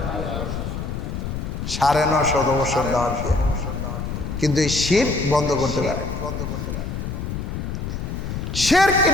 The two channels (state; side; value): noise; left; rumble, 5 dB below the sound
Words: 950 বছর দাওয়াত দিয়া, কিন্তু এই শিরক বন্ধ করতে পারে। শিরক